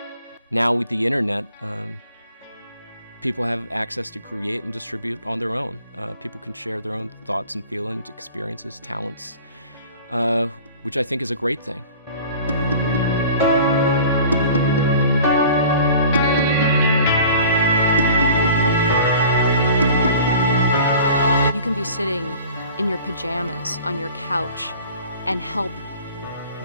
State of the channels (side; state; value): both; inverted; correlation -0.45